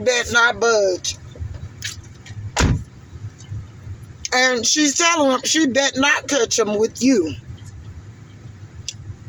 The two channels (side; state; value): both; identical; correlation 1.00